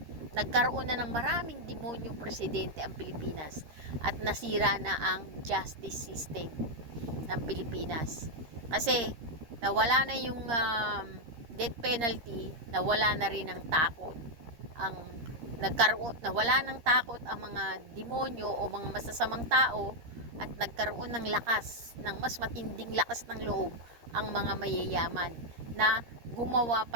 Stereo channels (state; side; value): late; left; 13 ms